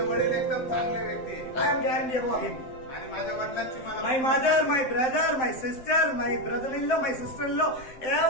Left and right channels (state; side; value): late; right; 7.7 ms